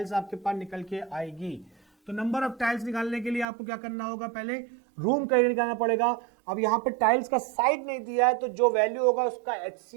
आपके पास निकल के आएगी। तो नंबर ऑफ टाइल्स निकालने के लिए आपको क्या करना होगा, पहले रूम का एरिया निकालना पड़ेगा। अब यहाँ पे टाइल्स का साइड नहीं दिया है तो जो वैल्यू होगा उसका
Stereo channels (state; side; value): drops out; left; at 3.5 s